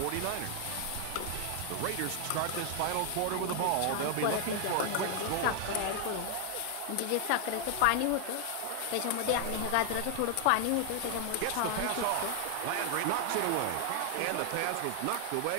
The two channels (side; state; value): both; different; correlation 0.00